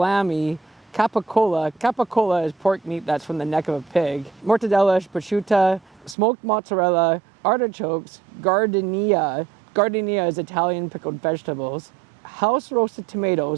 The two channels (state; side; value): drops out; left; at 6.2 s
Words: capicola. Capicola is pork meat that's from the neck of a pig. Mortadella, prosciutto, smoked mozzarella, artichokes, gardenia. Gardenia is Italian pickled vegetables. House roasted